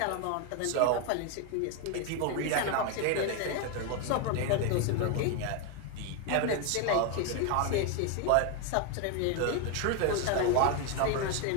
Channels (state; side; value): different; both; correlation 0.01